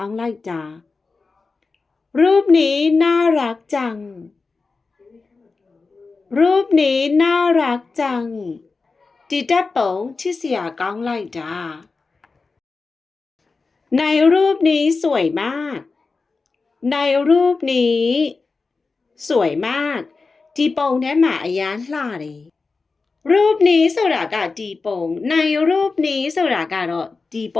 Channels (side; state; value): right; quieter; 4.2 dB